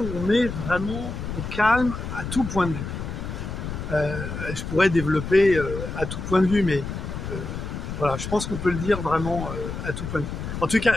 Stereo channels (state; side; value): noise; left; rumble, 6 dB below the sound